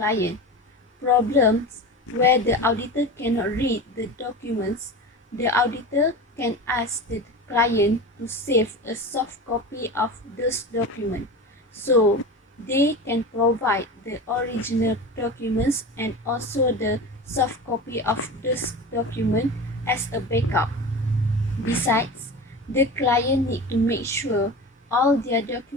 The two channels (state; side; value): normal; both; correlation 0.30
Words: Problems where the auditor cannot read the documents, the auditor can ask the client to save a soft copy of those documents, so they can provide the original documents and also the soft copy of this document as a backup. Besides, the client need to make sure all their